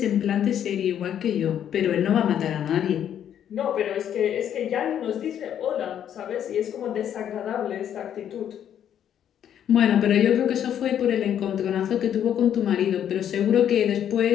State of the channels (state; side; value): quieter; right; 9.8 dB